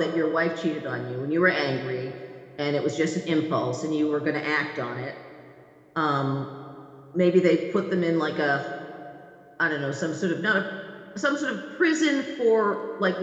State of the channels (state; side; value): identical; both; correlation 1.00